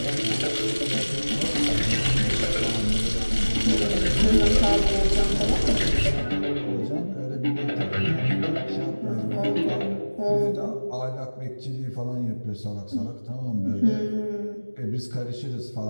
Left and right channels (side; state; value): both; inverted; correlation -1.00